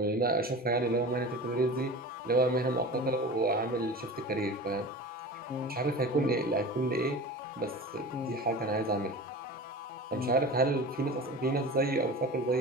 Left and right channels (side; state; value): both; normal; correlation 0.34